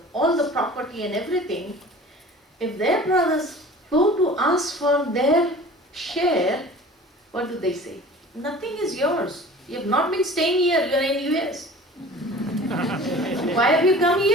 all the property and everything, if their brothers go to ask for their share, what do they say? Nothing is yours. You have not been staying here, you are in US. Why have you come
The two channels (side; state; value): both; normal; correlation 0.42